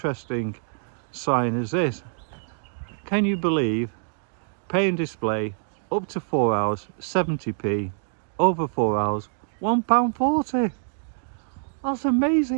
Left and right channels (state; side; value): silent; left; digital silence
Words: sign is this. Can you believe pay and display up to 4 hours 70p, over 4 hours £1.40? That's